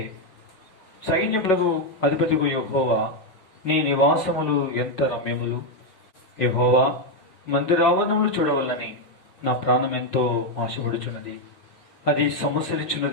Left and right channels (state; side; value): late; right; 5.5 ms